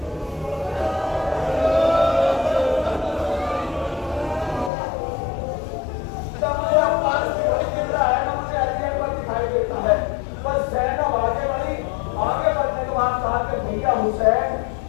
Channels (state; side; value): drops out; right; at 4.7 s